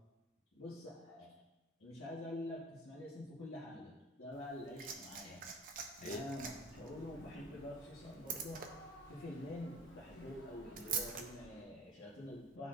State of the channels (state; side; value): normal; both; correlation 0.42